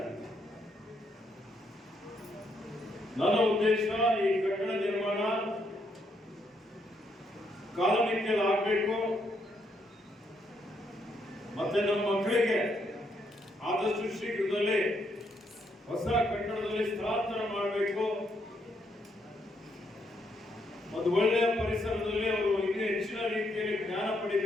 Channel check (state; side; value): normal; both; correlation 0.75